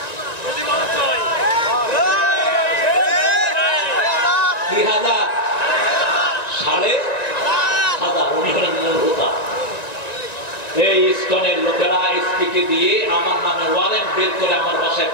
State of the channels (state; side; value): late; right; 1.9 ms